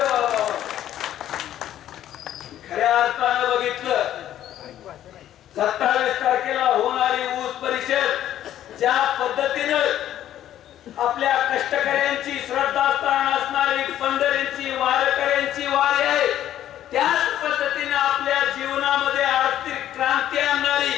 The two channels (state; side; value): quieter; right; 11.8 dB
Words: खऱ्या अर्थानं बघितलं 27 तारखेला होणारी ऊस परिषद ज्या पद्धतीनं आपल्या कष्टकऱ्यांची श्रद्धास्थान असणारी पंढरींची वारकऱ्यांची वारी आहे, त्याच पद्धतीने आपल्या जीवनामध्ये आर्थिक क्रांती आणणारी